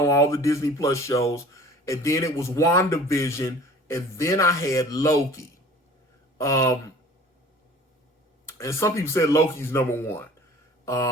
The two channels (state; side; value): normal; both; correlation 0.47